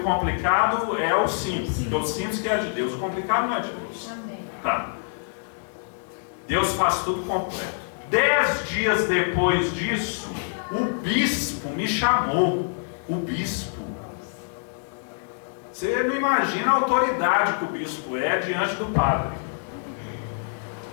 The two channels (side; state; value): right; silent; 61 dB below the other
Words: complicado, é o simples. Porque o simples que é de Deus. O complicado não é de Deus. Tá. Deus faz tudo completo. 10 dias depois disso, o bispo me chamou. O bispo. Você não imagina a autoridade que o bispo é diante do padre.